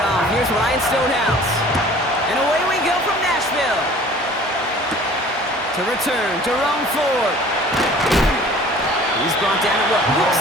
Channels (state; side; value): normal; both; correlation 0.48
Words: here's Ryan Stonehouse. And away we go from Nashville. To return, Jerome Ford. He's brought down at what looks